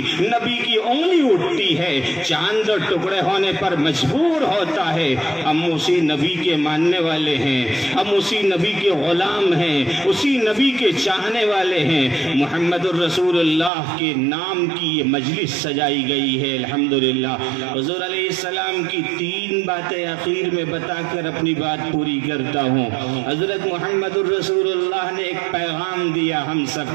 نبی کی انگلی اٹھتی ہے, چاند دو ٹکڑے ہونے پر مجبور ہوتا ہے. ہم اسی نبی کے ماننے والے ہیں, ہم اسی نبی کے غلام ہیں, اسی نبی کے چاہنے والے ہیں. محمد الرسول اللہ کے نام کی یہ مجلس سجائی گئی ہے. الحمدللہ. حضور علیہ السلام کی 3 باتیں اخیر میں بتا کر اپنی بات پوری کرتا ہوں. حضرت محمد الرسول اللہ نے ایک پیغام دیا ہم سب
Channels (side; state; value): left; drops out; at 13.7 s